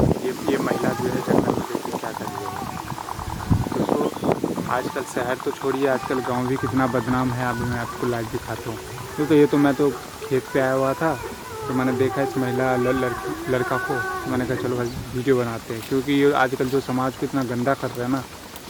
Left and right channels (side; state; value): both; identical; correlation 1.00